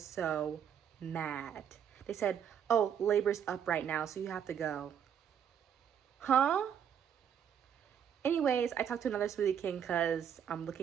so mad. They said, oh, labor's up right now, so you have to go. Huh? Anyways, I talked to another Smoothie King because I'm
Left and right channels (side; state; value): left; quieter; 8.5 dB